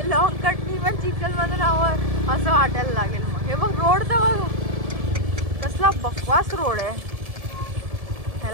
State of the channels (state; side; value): late; left; 1.7 ms